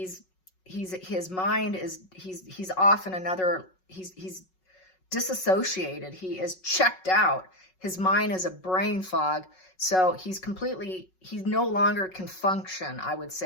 mind is, he's off in another, he's disassociated. He is checked out. His mind is a brain fog. So he no longer can function, I would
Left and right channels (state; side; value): late; right; 5.4 ms